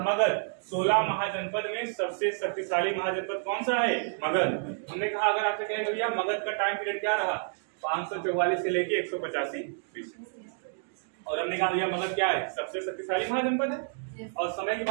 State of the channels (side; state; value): left; silent; digital silence